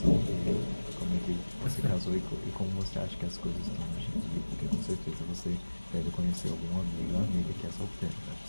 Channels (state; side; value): inverted; both; correlation -1.00